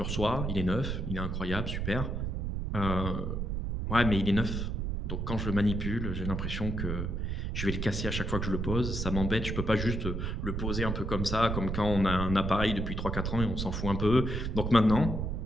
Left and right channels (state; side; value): noise; right; rumble, 2 dB below the sound